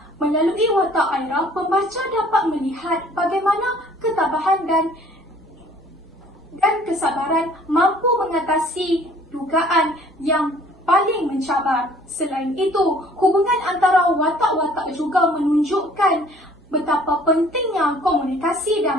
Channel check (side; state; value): right; noise; hum, 30 dB below the sound